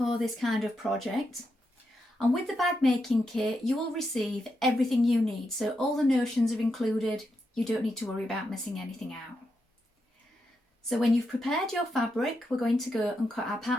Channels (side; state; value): both; normal; correlation 0.84